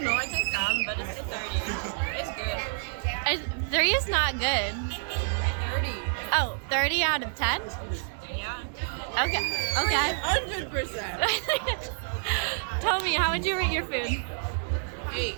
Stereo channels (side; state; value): left; silent; 59 dB below the other